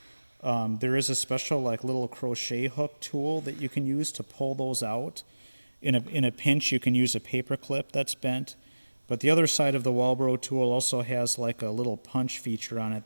There is a special like little crochet hook tool that you can use to pull those out. In a pinch, you can use a paper clip that's bent. But the other side of the Walbro tool also has like a little punch feature on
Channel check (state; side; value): inverted; both; correlation -1.00